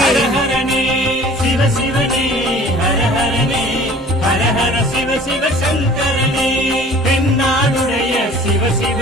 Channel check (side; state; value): both; normal; correlation 0.48